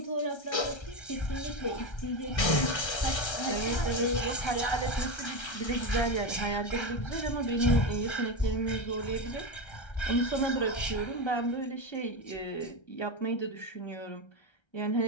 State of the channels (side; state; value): right; late; 1.3 ms